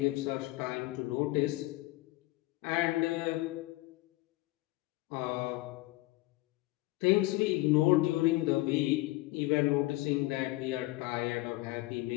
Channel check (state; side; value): quieter; right; 20.0 dB